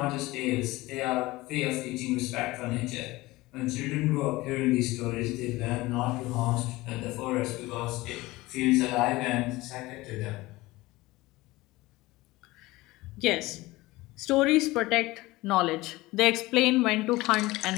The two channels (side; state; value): right; quieter; 19.8 dB